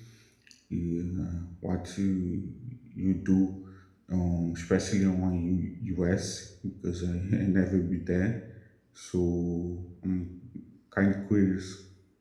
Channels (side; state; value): both; identical; correlation 1.00